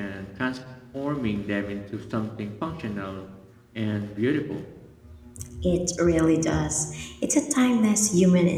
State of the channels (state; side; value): identical; both; correlation 1.00